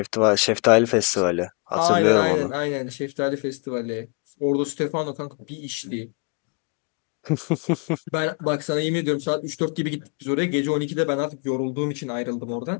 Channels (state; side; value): quieter; right; 33.7 dB